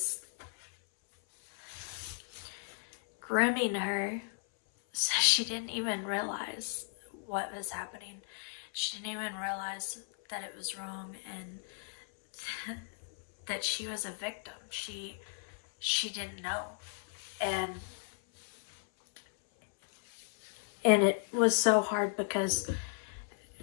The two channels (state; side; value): silent; right; 54 dB below the other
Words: grooming her, so she didn't even realize what was happening. She didn't even realize that it was wrong and that she was a victim. She didn't know. And it was so hard because